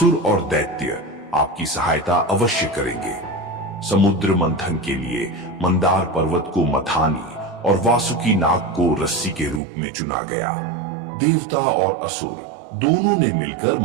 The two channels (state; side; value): drops out; left; at 9.6 s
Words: और दैत्य आपकी सहायता अवश्य करेंगे। समुद्र मंथन के लिए मंदार पर्वत को मथानी और वासुकी नाग को रस्सी के रूप में चुना गया। देवता और असुर दोनों ने मिलकर